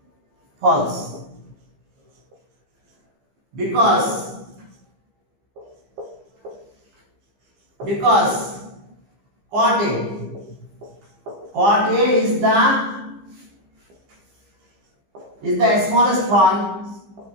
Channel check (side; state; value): left; late; 15 ms